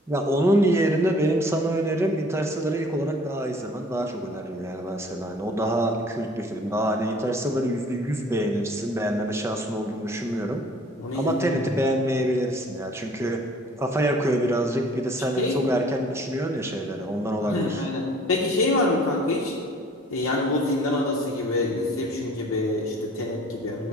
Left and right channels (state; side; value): normal; both; correlation 0.52